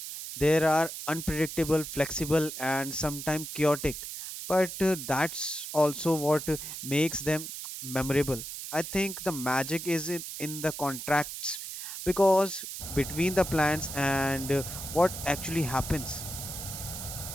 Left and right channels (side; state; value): right; noise; hiss, 8 dB below the sound